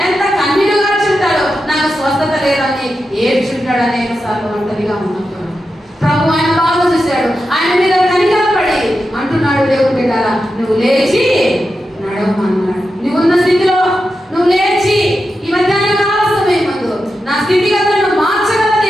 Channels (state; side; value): normal; both; correlation 0.89